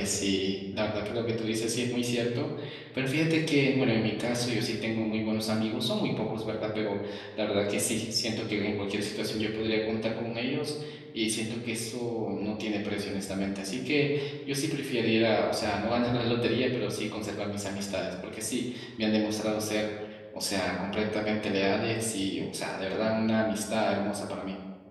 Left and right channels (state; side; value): identical; both; correlation 1.00